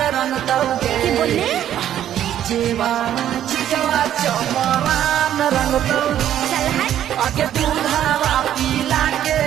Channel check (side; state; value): left; quieter; 11.1 dB